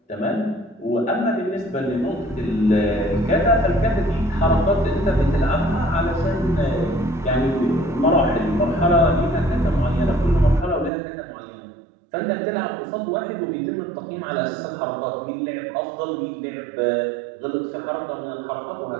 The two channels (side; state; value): left; drops out; at 10.9 s